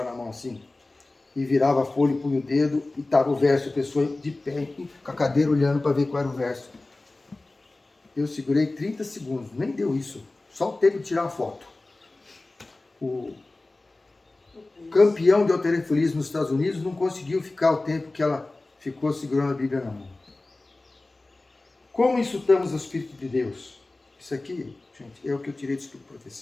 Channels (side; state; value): right; quieter; 3.0 dB